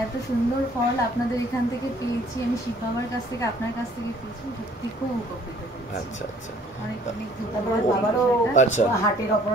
এত সুন্দর ফল আপনাদের এখান থেকে পেয়েছি, আমি শিব বাবার কাছ থেকে আপনার কাছ থেকে পেয়েছি, সত্যি খুব উপকৃত হয়েছি। আচ্ছা আচ্ছা। অনেক অনেক তারপরে বাবারও আচ্ছা হার্টের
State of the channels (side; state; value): both; normal; correlation 0.57